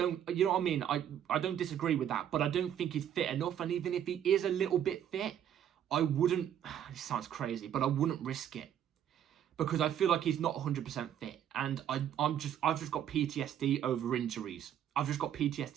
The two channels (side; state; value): left; quieter; 10.0 dB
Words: know what I mean? I don't disagree with that, but I don't think he's fit enough. And even if he is a little bit fit, I wouldn't, it sounds crazy, but I wouldn't risk it. Because I feel like he's not 100% fit. And I've just got PTSD over injuries. I've just got